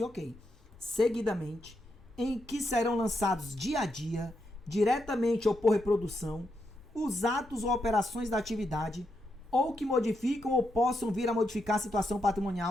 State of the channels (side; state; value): left; noise; rumble, 26 dB below the sound